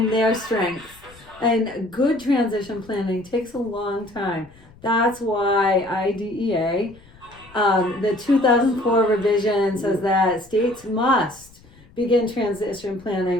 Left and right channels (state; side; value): noise; left; rumble, 25 dB below the sound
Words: their strengths. And good transition planning takes a long time. That's why IDEA, the 2004 revision, says that states must begin transition